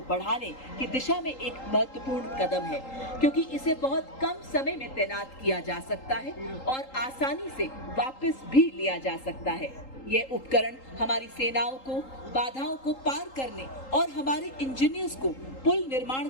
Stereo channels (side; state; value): right; late; 3.8 ms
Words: बढ़ाने की दिशा में एक महत्वपूर्ण कदम है, क्योंकि इसे बहुत कम समय में तैनात किया जा सकता है और आसानी से वापस भी लिया जा सकता है। यह उपकरण हमारी सेनाओं को बाधाओं को पार करने और हमारे इंजीनियर्स को पुल निर्माण